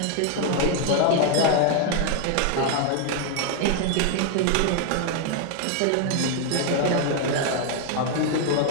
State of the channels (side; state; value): both; different; correlation 0.00